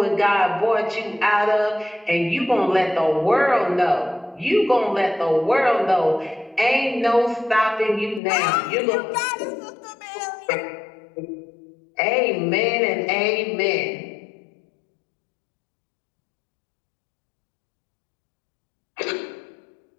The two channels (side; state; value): right; drops out; at 8.2 s